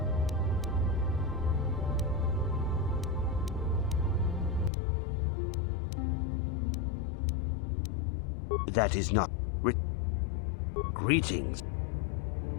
that is not greetings.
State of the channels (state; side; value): drops out; right; at 4.7 s